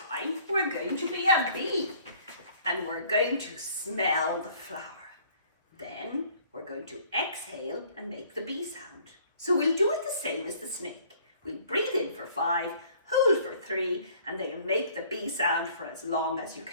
we're going to be a bee. And we're going to smell the flower. Then we're going to exhale and make the bee sound. So we'll do it the same as the snake. We'll breathe in for 5, hold for 3, and then make the bee sound for as long as you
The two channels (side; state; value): both; inverted; correlation -0.56